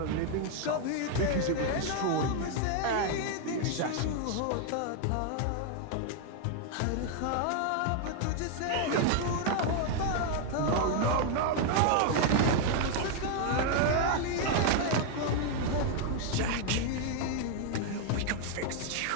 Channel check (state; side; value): different; both; correlation 0.00